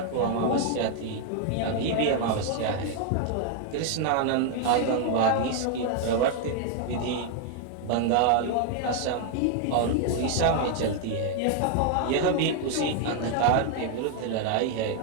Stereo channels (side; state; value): both; different; correlation 0.00